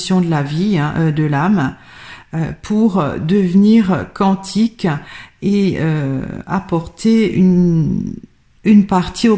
de la vie, de l'âme, pour devenir quantique et apporter une partie au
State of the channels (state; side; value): identical; both; correlation 1.00